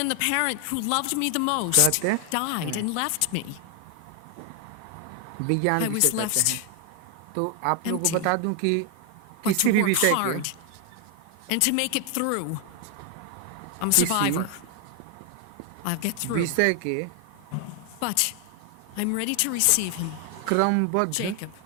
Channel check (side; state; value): both; different; correlation 0.00